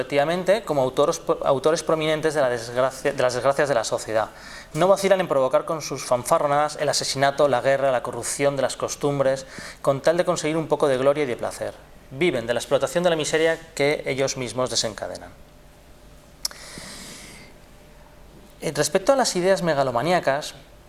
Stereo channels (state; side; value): identical; both; correlation 1.00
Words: como autores prominentes de las desgracias de la sociedad. No vacilan en provocar con sus fanfarronadas el asesinato, la guerra, la corrupción de las costumbres, con tal de conseguir un poco de gloria y de placer. Viven de la explotación de la miseria que ellos mismos desencadenan. Respecto a las ideas megalomaníacas,